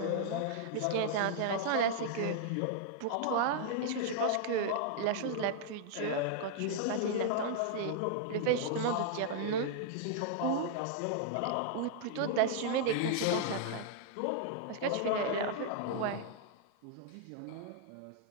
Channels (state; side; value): different; both; correlation -0.01